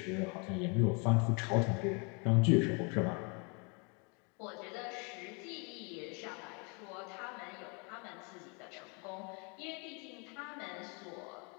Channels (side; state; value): right; quieter; 33.6 dB